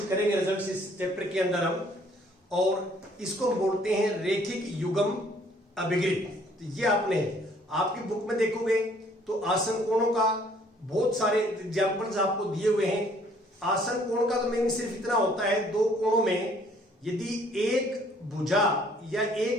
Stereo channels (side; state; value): both; normal; correlation 0.61